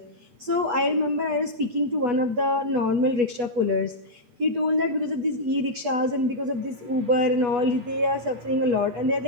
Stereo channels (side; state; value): left; late; 8.2 ms